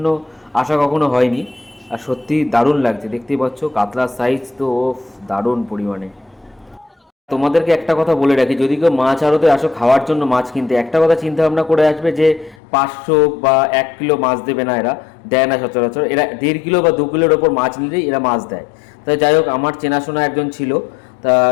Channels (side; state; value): right; drops out; at 12.6 s